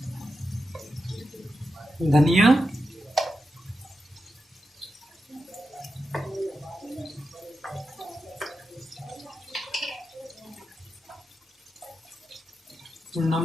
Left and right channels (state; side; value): normal; both; correlation 0.89